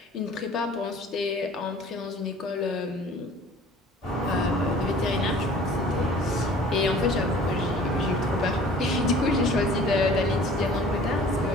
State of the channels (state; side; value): normal; both; correlation 0.48